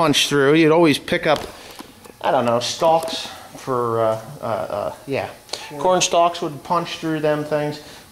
through. You'd always pick up, I don't know, stalks for, corn stalks would punch through them things.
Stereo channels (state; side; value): identical; both; correlation 1.00